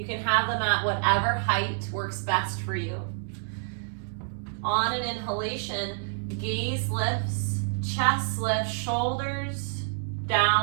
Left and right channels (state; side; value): silent; left; digital silence